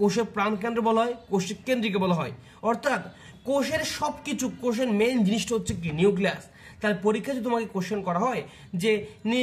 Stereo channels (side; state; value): both; identical; correlation 1.00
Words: প্রাণকেন্দ্র বলা হয়, কোষের কেন্দ্রিকে বলা হয়। অর্থাৎ কোষের সবকিছু, কোষের মেইন জিনিসটা হচ্ছে কি নিউক্লিয়াস। তার পরীক্ষা যদি তোমাকে কোশ্চেন করা হয় যে